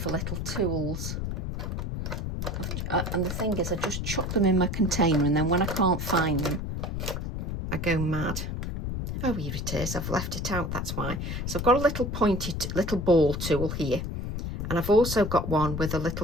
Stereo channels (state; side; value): noise; left; rumble, 3 dB below the sound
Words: little tools, and the thing is I just chuck them in my container, and then when I can't find them I go mad. Oh, here it is, I've left it out, that's why. So I've got a little pointed little ball tool here, and I've also got one with a